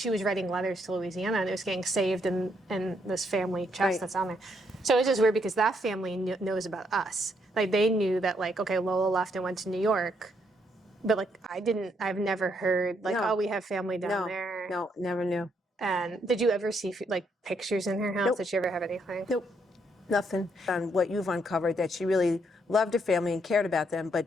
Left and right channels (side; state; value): both; normal; correlation 0.74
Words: was writing letters to Louisiana and it was getting saved in this family chest that's on there. So it's just weird because that family knows about us. Like they knew that like, okay, Lola left and went to New York. But like I've never heard like, oh, we have family down there. No, never knew. And did you ever see like pictures in her house? Nope. Did you ever have anything? Nope, nothing. On what you've uncovered, that she really loved her family and cared about them,